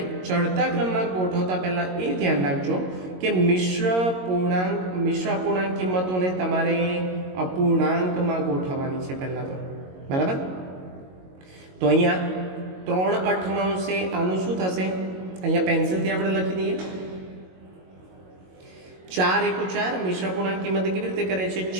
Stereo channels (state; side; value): late; left; 22 ms